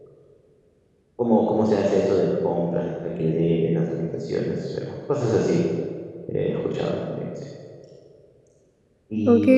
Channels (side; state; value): both; identical; correlation 1.00